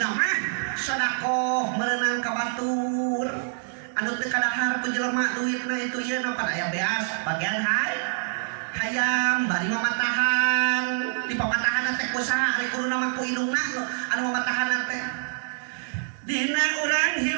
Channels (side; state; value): left; silent; digital silence